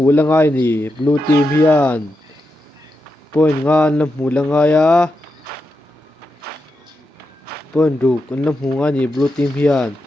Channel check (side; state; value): both; normal; correlation 0.87